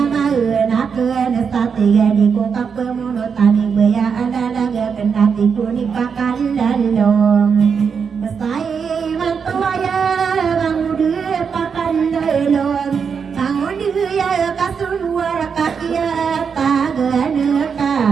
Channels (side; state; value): left; quieter; 6.3 dB